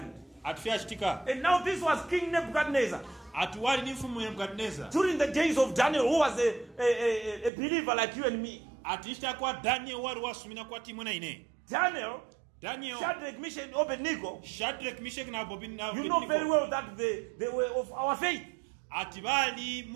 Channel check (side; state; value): left; drops out; at 7.5 s